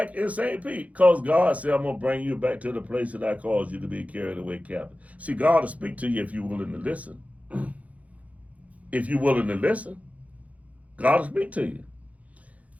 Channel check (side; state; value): left; late; 0.068 ms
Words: in St. Pete? Because God said, I'm going to bring you back to the place that I caused you to be carried away captive. See, God will speak to you if you're willing to listen. If you're willing to listen, God will speak to you.